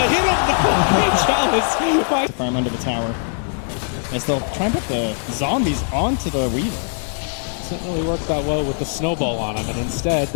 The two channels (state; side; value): silent; right; 65 dB below the other